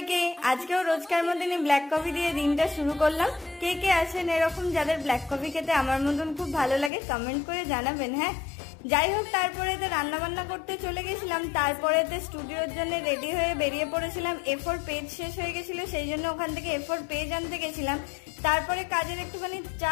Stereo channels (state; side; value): drops out; right; at 6.9 s